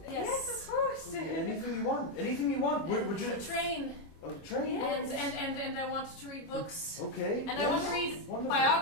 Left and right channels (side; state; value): right; late; 24 ms